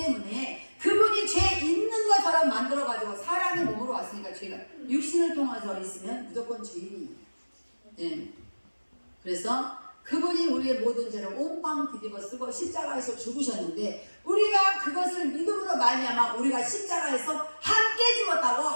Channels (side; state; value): both; inverted; correlation -1.00